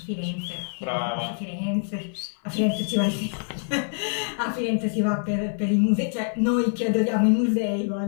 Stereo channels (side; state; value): right; silent; digital silence